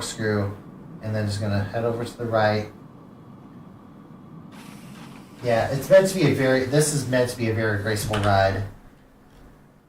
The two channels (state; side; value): identical; both; correlation 1.00